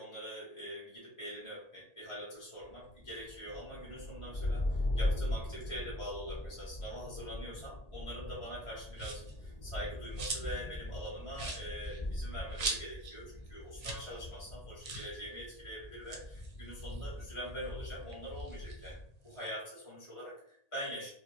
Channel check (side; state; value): right; late; 1.8 ms